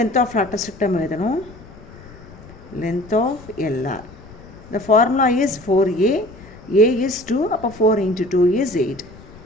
ஆஃப் லேட்டிஸ் ரெக்டம் எழுதணும். length of LR. The formula is 4a, a is 2, அப்போ 4 into 2 is 8.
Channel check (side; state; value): left; noise; rumble, 19 dB below the sound